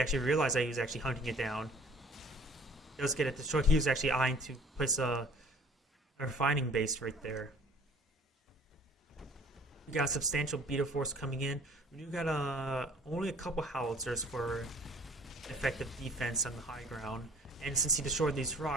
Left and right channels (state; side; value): normal; both; correlation 0.52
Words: realized that he was actually hunting it down. does get it destroyed. He was actually eyeing to place a refining base right there. We got a substantial beta force coming in. We do got only a couple howitzers for effective defense on the high ground. And since he destroyed these